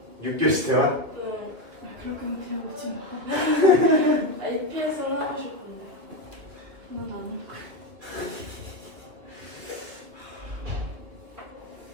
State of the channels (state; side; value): late; left; 2.6 ms